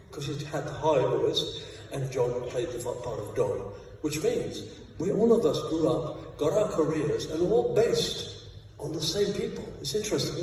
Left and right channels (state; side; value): identical; both; correlation 1.00